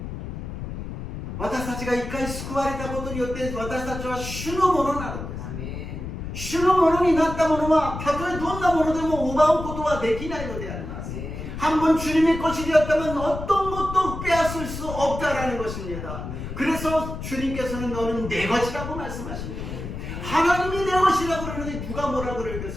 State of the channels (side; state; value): left; noise; rumble, 7 dB below the sound